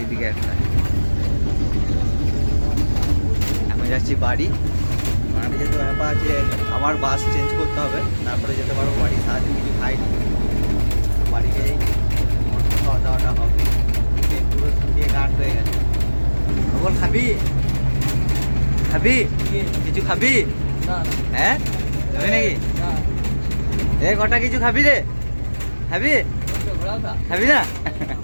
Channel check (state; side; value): inverted; both; correlation -1.00